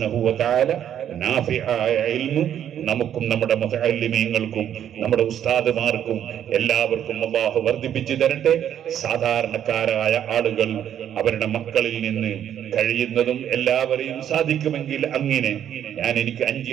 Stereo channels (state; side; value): quieter; left; 10.0 dB